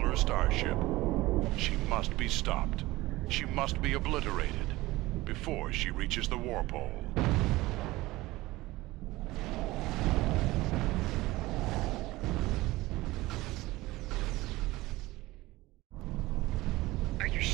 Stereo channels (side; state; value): left; quieter; 19.1 dB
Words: starship. She must be stopped. She must be obliterated before she reaches the Warpole. Are you